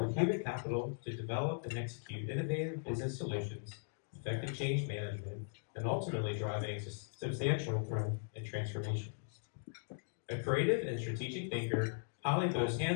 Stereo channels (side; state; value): right; silent; digital silence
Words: human capital to develop and execute innovative business solutions, effective change management, and ultimately driving substantial growth and transformation. A creative and strategic thinker, Holly boasts